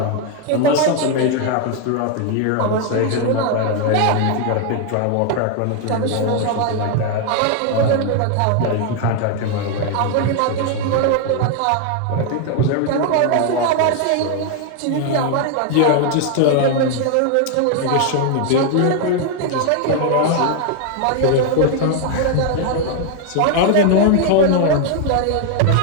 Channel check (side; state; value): both; different; correlation 0.01